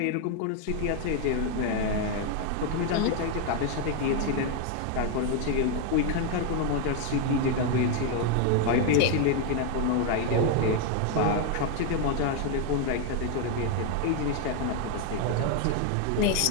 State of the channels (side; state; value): both; different; correlation 0.01